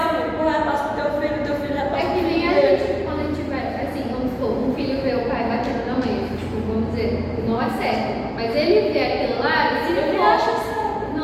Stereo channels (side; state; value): both; identical; correlation 1.00